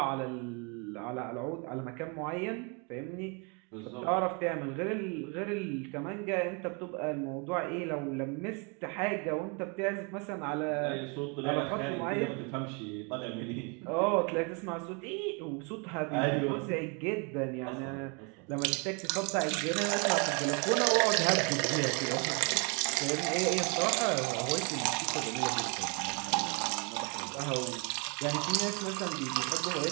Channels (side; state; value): left; quieter; 33.9 dB